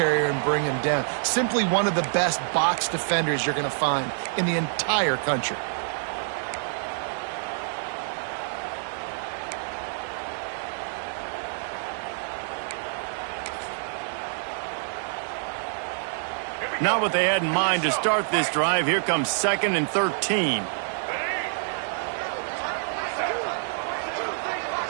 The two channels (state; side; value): silent; left; digital silence